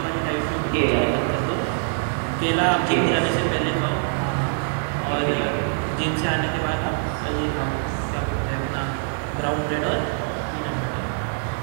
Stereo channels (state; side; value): silent; left; 62 dB below the other